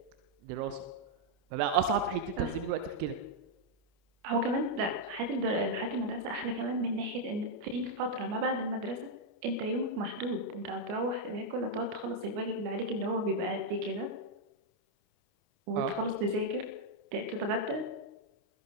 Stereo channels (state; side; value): late; left; 29 ms